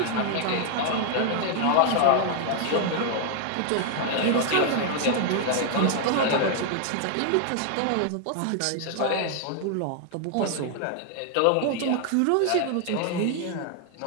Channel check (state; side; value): different; both; correlation 0.00